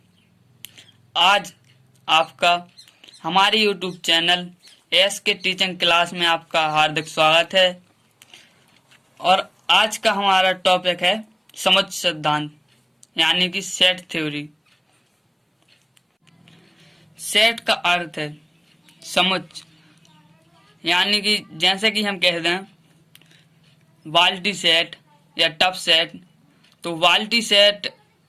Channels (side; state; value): both; identical; correlation 1.00